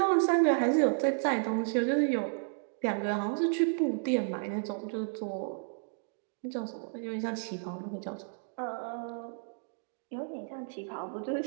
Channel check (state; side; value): silent; left; digital silence